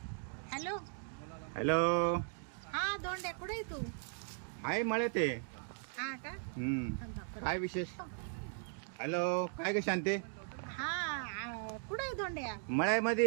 Hello hello. हा धोंड्या कुठे आहे तू? आहे मळे ते. हा का? काय विशेष? हॅलो काय ग शांते? हा कुठे आहे धोंड्या?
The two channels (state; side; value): silent; left; 53 dB below the other